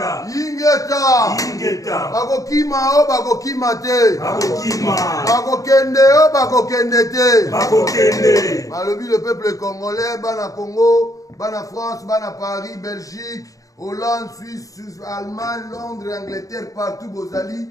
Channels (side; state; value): right; late; 0.17 ms